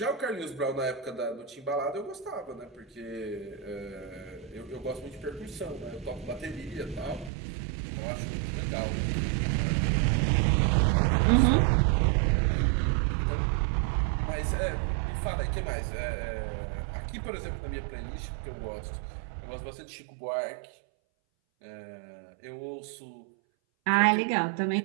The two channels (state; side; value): drops out; left; at 7.3 s